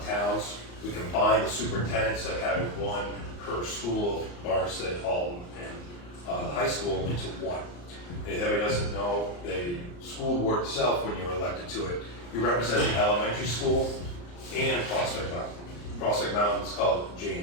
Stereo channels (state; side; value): late; right; 34 ms